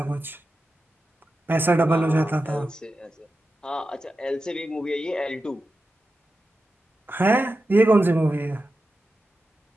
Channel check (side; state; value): both; normal; correlation 0.91